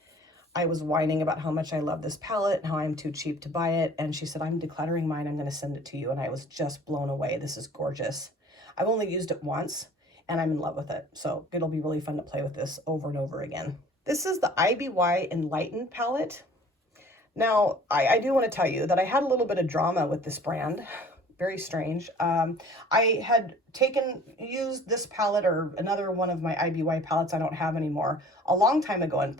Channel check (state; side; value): normal; both; correlation 0.50